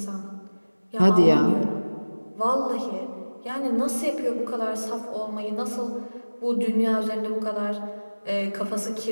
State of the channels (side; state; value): both; inverted; correlation -1.00